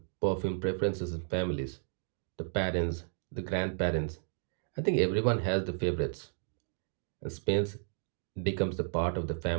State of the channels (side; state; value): left; silent; digital silence